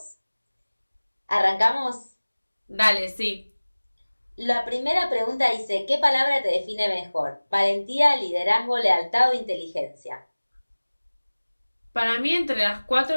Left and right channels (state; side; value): inverted; both; correlation -1.00